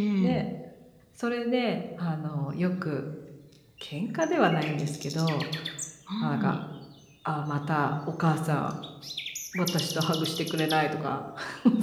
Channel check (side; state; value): both; identical; correlation 1.00